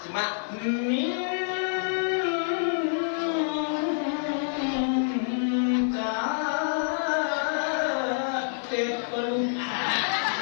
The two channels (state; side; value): silent; right; 55 dB below the other